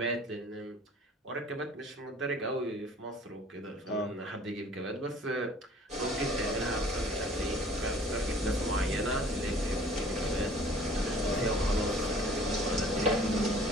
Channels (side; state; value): both; normal; correlation 0.51